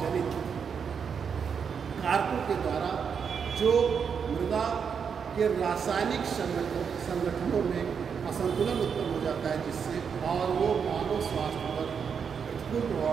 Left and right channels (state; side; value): quieter; left; 6.7 dB